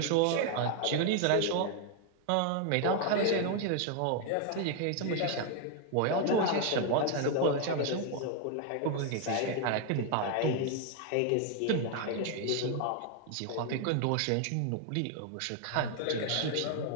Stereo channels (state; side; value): different; both; correlation 0.00